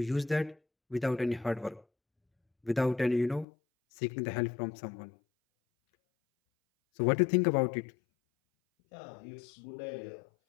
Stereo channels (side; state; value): right; drops out; at 3.5 s